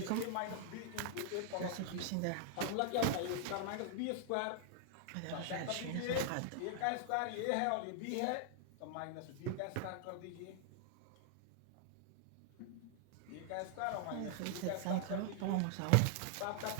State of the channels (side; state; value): both; different; correlation 0.00